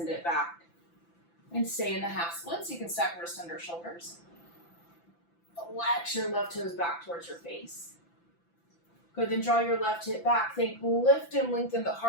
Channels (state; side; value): late; right; 5.9 ms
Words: it back. And stay in the half splits. You can stack wrists under shoulders. Flex your left toes back towards your face. Good, then draw your left hip back. Think lift and lengthen the